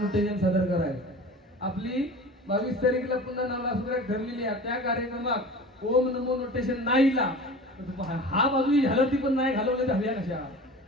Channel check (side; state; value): both; normal; correlation 0.38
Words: सादर कराय. आपली 22 तारीखला पुन्हा नालासुरात ठरलेली आहे. त्या कार्यक्रमात ओम नमो नोटेशन नाही ला, हा बाजू झालं ती पण नाही घालवले झाल्या कशा.